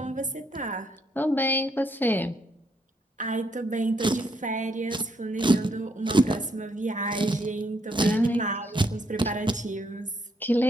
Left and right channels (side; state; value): both; normal; correlation 0.74